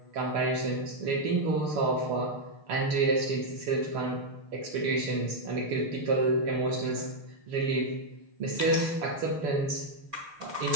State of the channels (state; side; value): late; left; 6.6 ms